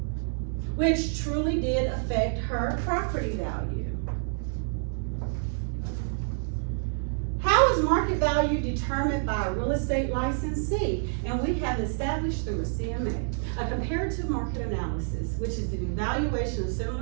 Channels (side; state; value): left; silent; 59 dB below the other